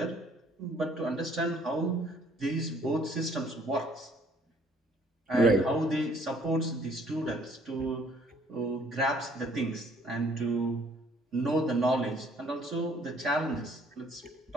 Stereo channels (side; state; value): both; normal; correlation 0.61